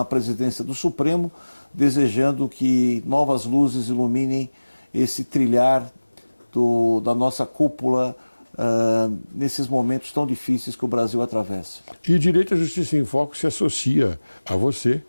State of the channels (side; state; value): both; inverted; correlation -1.00